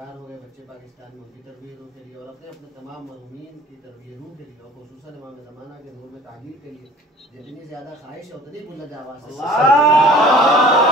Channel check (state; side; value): normal; both; correlation 0.47